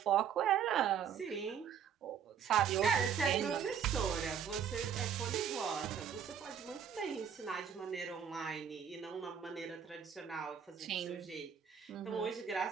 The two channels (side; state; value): left; quieter; 7.9 dB